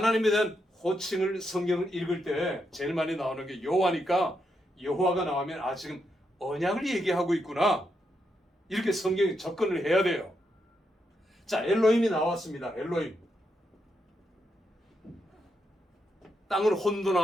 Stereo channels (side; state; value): both; normal; correlation 0.82